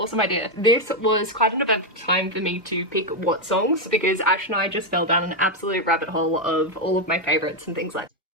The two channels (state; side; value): normal; both; correlation 0.03